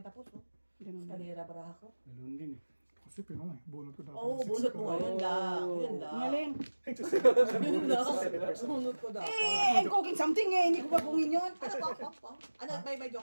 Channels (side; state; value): both; inverted; correlation -1.00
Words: tapos. No? ganun. Kalera baraha ko. Ganun din eh. Kasi pinong eh. Bunot ko dapat. Oo, bunot mo. Yun lang. Yun lang. Galing. Yun lang. Bunot ko dapat. I'm cooking something eh. Hindi ko pa bungin yun. Ano, may